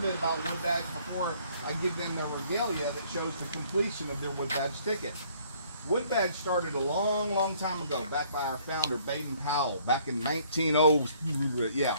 about Wood Badge before I give them their regalia that shows the completion of their Wood Badge ticket. Wood Badge started a long time ago, back by our founder, Baden Powell, back in 1900, yeah,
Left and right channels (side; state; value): both; inverted; correlation -0.61